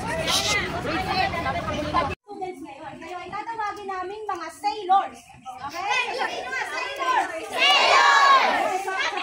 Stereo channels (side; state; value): both; identical; correlation 1.00